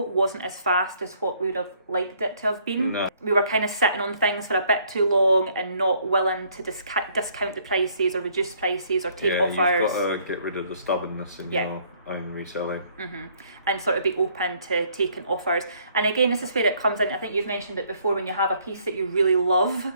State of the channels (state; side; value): inverted; both; correlation -0.64